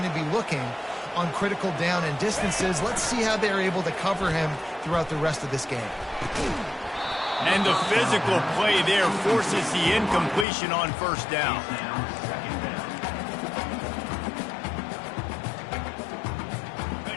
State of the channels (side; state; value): right; drops out; at 10.5 s